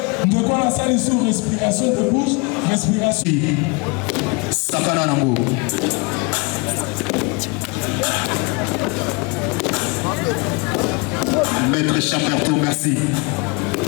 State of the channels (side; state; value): right; quieter; 30.2 dB